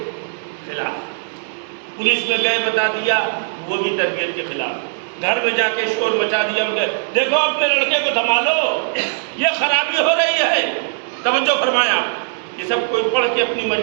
خلاف۔ پولیس میں گئے بتا دیا، وہ بھی تربیت کے خلاف۔ گھر میں جا کے شور مچا دیا، دیکھو اپنے لڑکے کو سنبھالو، یہ خرابی ہو رہی ہے۔ توجہ فرمایا، یہ سب کوئی پڑھ کے اپنی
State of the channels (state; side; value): silent; left; digital silence